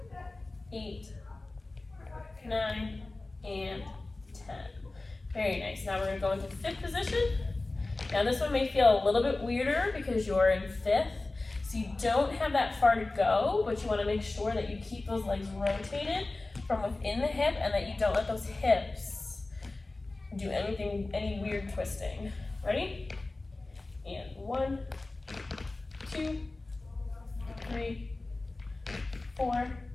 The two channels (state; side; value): quieter; right; 3.1 dB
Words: 8, 9, and 10. Very nice. Now we're going to go into fifth position. Now this one may feel a little bit weirder because you're in fifth, so you don't have that far to go, but you want to make sure that you keep those legs rotated from within the hip and that you don't let those hips do any weird twisting. Ready? And 1, 2, 3, 4,